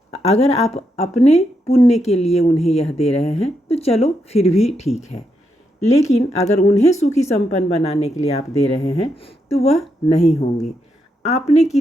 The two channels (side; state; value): both; normal; correlation 0.81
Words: अगर आप अपने पुण्य के लिए उन्हें यह दे रहे हैं तो चलो फिर भी ठीक है, लेकिन अगर उन्हें सुखी संपन्न बनाने के लिए आप दे रहे हैं तो वह नहीं होंगे। आपने